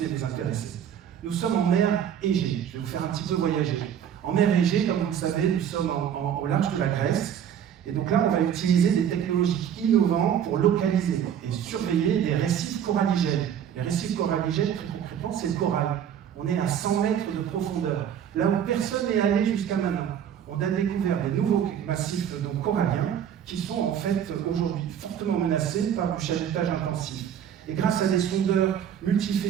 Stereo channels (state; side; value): quieter; left; 9.1 dB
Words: et vous intéresser. Nous sommes en mer Égée. Je vais vous faire un petit peu voyager. En mer Égée, comme vous le savez, nous sommes au large de la Grèce. Et donc là, on va utiliser des technologies innovantes pour localiser et surveiller des récifs coralligènes. Les récifs coralligènes, très concrètement, c'est le corail. On est à 100 mètres de profondeur. Là où personne n'est allé jusqu'à maintenant. On a découvert des nouveaux massifs donc, coralliens qui sont en fait aujourd'hui fortement menacés par du chalutage intensif. Et grâce à des sondeurs